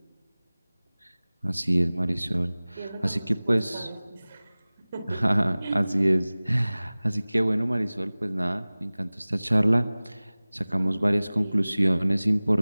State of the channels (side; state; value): both; inverted; correlation -0.99